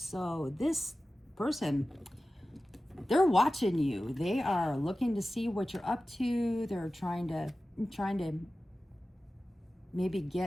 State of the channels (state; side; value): normal; both; correlation 0.95